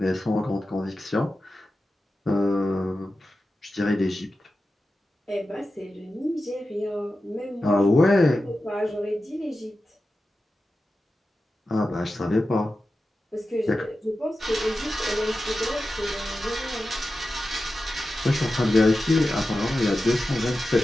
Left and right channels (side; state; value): both; normal; correlation 0.92